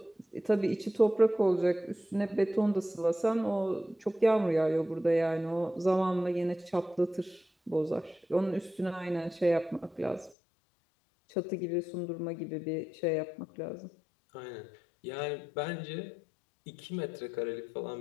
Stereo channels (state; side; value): drops out; right; at 10.4 s